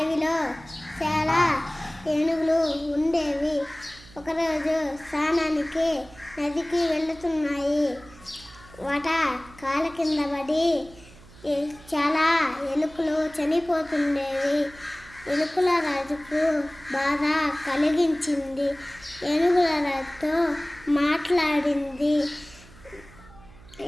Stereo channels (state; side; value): noise; right; hum, 22 dB below the sound